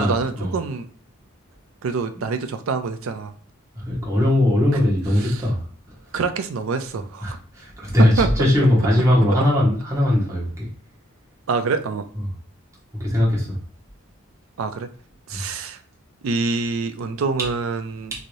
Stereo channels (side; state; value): both; normal; correlation 0.70